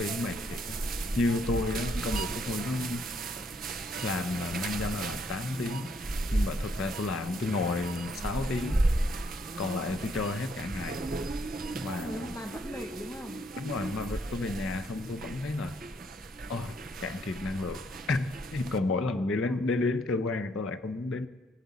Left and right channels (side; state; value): both; normal; correlation 0.70